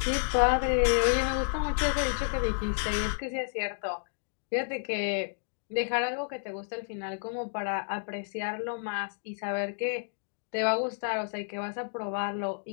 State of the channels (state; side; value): silent; right; digital silence